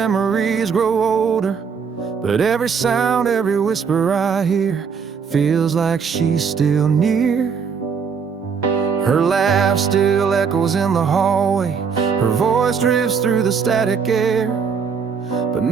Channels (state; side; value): quieter; left; 6.2 dB